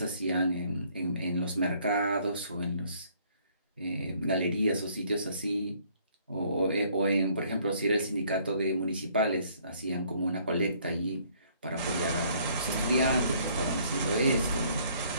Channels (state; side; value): inverted; both; correlation -0.63